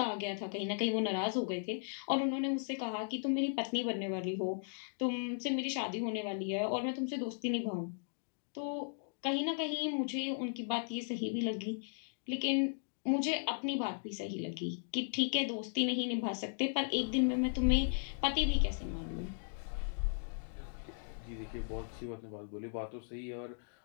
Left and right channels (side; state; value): right; silent; digital silence